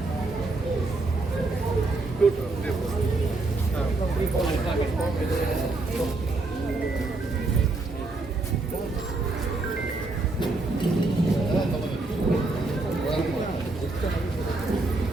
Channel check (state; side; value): quieter; left; 3.2 dB